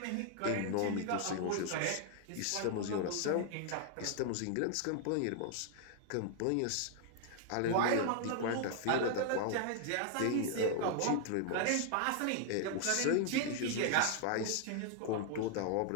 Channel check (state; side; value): different; both; correlation 0.00